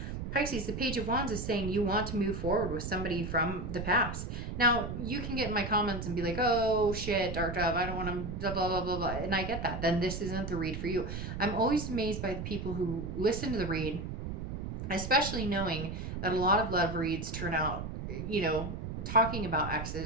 Pisces, the Page of Wands is saying you want to move forward with somebody from the past. Now, you can get in my comments and be like, oh, shit, Dark Dove, I don't want to blah, blah, blah, blah, blah. And I get that. Then this isn't the read for you. I'm always amazed by the people who listen to the read, especially knowing that a lot of love reads turn out, talking about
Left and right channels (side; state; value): right; noise; rumble, 5 dB below the sound